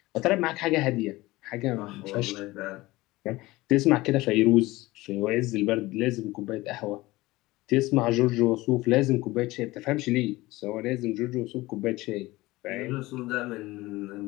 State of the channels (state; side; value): quieter; right; 19.6 dB